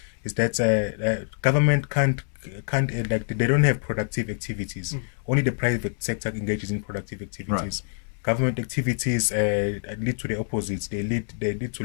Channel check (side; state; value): right; silent; 61 dB below the other